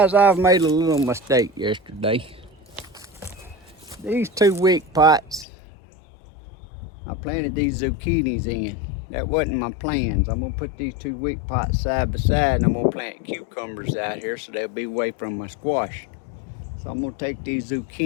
I've made a little mistake yesterday. These 2 wick pots, I planted these zucchinis in. That wasn't my plans. I'm gonna put these 2 wick pots side by side, and I'm gonna plant cucumbers out here so they'll be away from my squash. So I'm gonna take these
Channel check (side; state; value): right; drops out; at 5.5 s